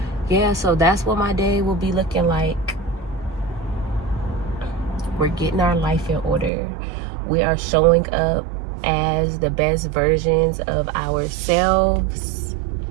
yeah, so that's what my day will be looking like. We're getting our life in order. We are showing up as the best versions of ourselves.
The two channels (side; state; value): left; drops out; at 6.5 s